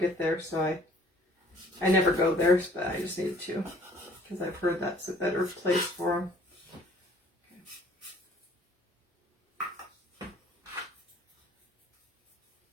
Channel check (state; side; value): normal; both; correlation 0.55